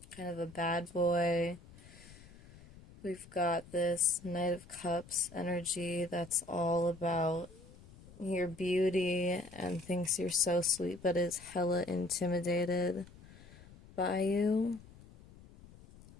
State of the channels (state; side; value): noise; left; rumble, 21 dB below the sound